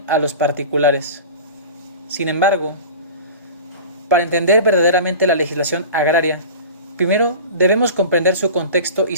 a los particulares. Sin embargo, para entender verdaderamente la legislación agraria, primero debemos comprender su contexto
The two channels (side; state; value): both; inverted; correlation -0.35